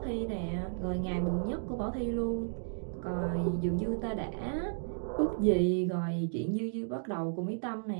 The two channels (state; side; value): silent; left; digital silence